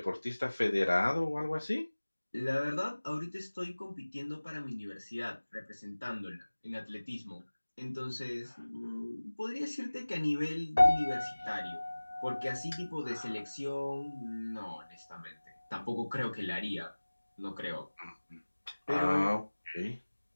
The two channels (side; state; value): both; inverted; correlation -1.00